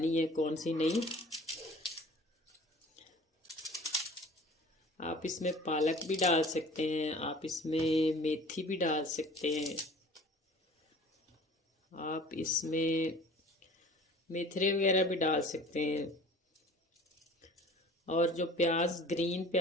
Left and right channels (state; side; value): normal; both; correlation 0.46